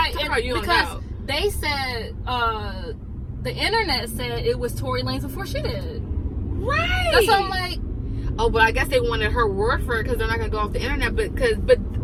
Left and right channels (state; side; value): identical; both; correlation 1.00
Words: Because they said the internet said it was Tory Lanez before she did. Right. That's what I'm like. Oh, but I guess they wanted her word for it because they're not gonna go off the internet.